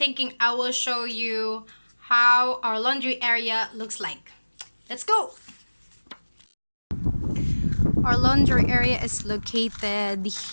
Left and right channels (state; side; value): inverted; both; correlation -1.00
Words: I will show you how our laundry area looks like. Let's go! Our laundry area is located